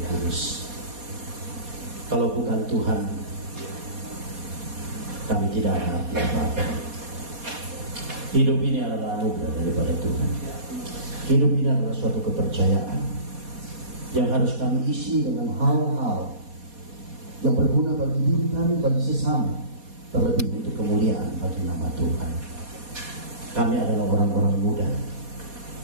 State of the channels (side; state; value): left; late; 4.2 ms